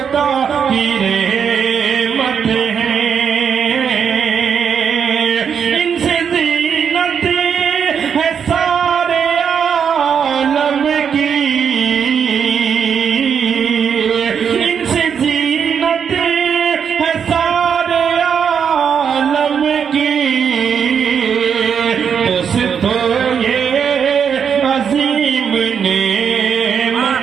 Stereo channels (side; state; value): left; quieter; 7.3 dB